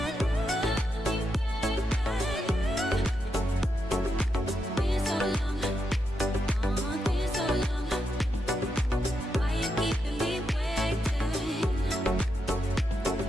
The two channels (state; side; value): normal; both; correlation 0.84